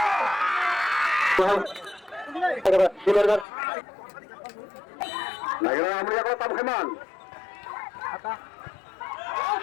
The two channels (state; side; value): drops out; right; at 3.5 s